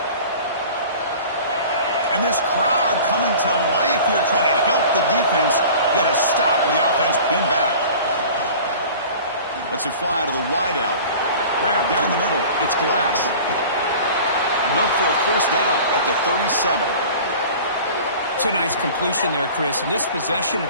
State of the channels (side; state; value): both; inverted; correlation -0.42